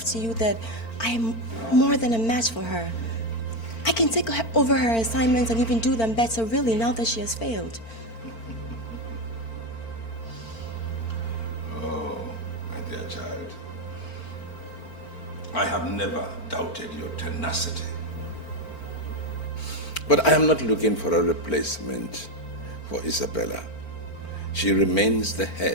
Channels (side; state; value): right; late; 4.4 ms